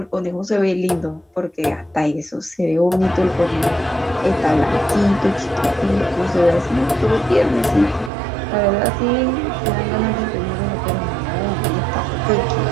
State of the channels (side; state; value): left; drops out; at 8.1 s